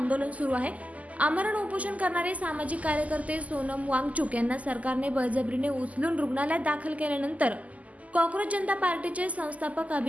सुरू आहे। आमरण उपोषण करणारे सामाजिक कार्यकर्ते सोनम वांगचुक यांना सरकारने बळजबरीने उचलून रुग्णालयात दाखल केल्यानंतर कॉक्रोच जनता पार्टीचे संस्थापक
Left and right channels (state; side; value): late; left; 0.073 ms